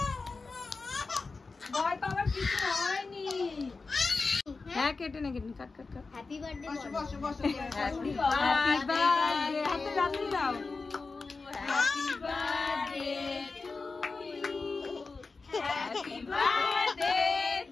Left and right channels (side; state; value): right; quieter; 4.1 dB